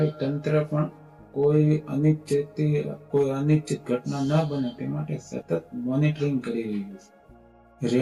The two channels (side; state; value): both; identical; correlation 1.00